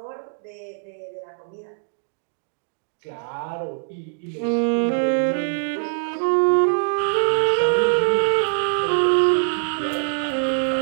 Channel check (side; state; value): left; silent; digital silence